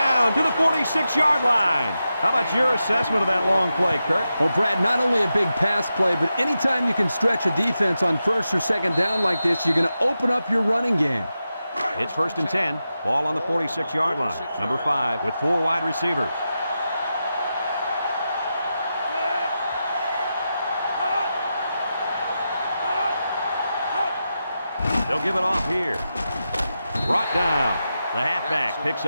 to the 46-yard line. How about your assessment of that long play, Kirk? Well, Brad, not only a big pass play, but anytime you can stretch a defense on 1st or 2nd down like this, you're going to open up your running game. It's 1st and 10. Ball on the 46-yard line. Number 5 with 4 wide receivers. They'll give it off here. Brought down. The halfback picks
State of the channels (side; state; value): both; inverted; correlation -0.90